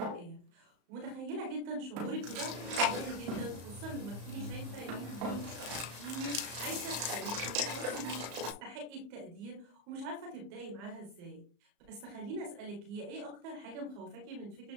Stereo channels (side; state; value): left; late; 34 ms